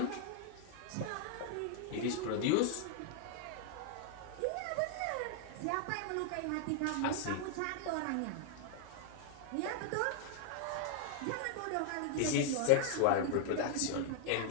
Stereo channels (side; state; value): both; different; correlation 0.00